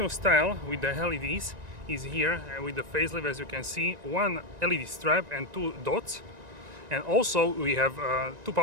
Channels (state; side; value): late; left; 1.9 ms